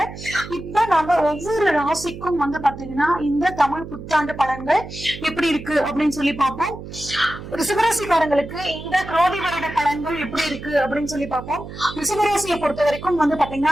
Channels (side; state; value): right; noise; hum, 12 dB below the sound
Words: இப்ப நம்ம ஒவ்வொரு ராசிக்கும் வந்து பாத்தீங்கன்னா இந்த தமிழ் புத்தாண்டு பலன்கள் எப்படி இருக்கு அப்படின்னு சொல்லி பார்ப்போம். ரிஷபராசிக்காரங்களுக்கு இந்த குரோதி வருட பலன்கள் எப்படி இருக்கு அப்படின்னு சொல்லி பார்ப்போம். ரிஷபராசியை பொறுத்த வரைக்கும் வந்து